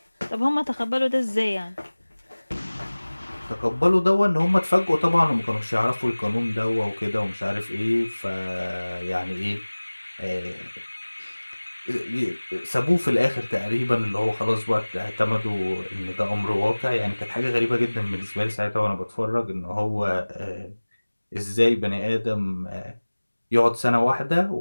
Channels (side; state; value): both; inverted; correlation -1.00